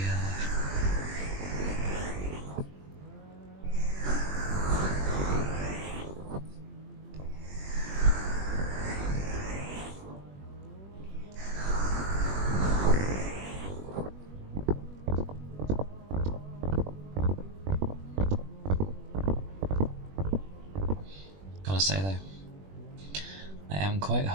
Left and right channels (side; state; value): left; late; 21 ms